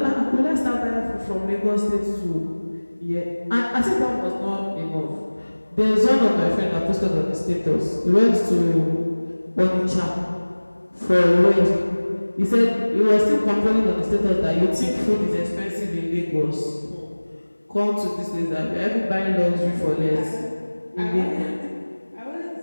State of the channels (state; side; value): inverted; both; correlation -1.00